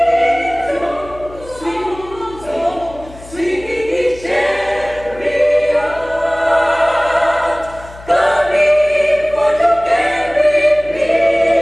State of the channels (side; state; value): left; noise; hum, 19 dB below the sound